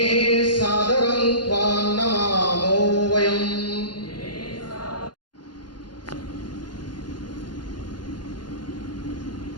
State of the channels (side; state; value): right; late; 0.71 ms